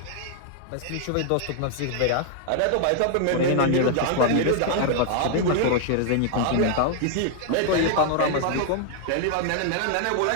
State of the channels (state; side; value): different; both; correlation 0.00